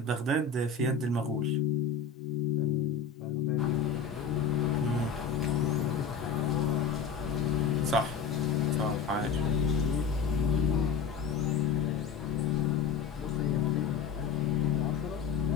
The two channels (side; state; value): right; quieter; 6.0 dB